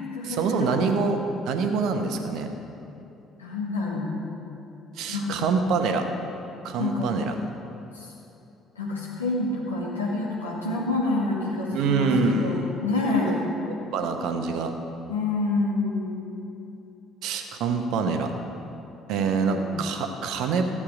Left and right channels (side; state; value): both; normal; correlation 0.43